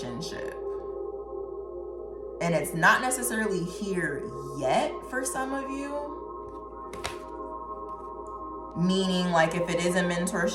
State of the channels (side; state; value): both; identical; correlation 1.00